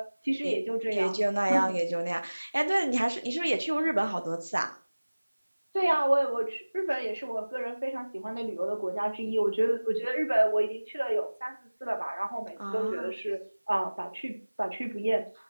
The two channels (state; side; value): inverted; both; correlation -1.00